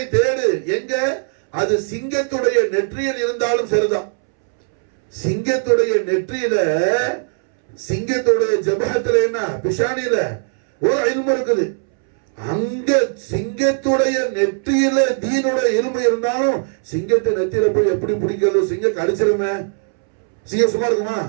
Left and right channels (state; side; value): silent; left; 67 dB below the other